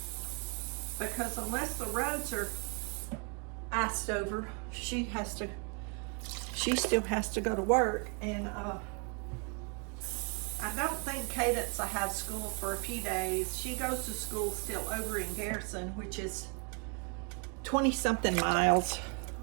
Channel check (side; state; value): left; quieter; 36.4 dB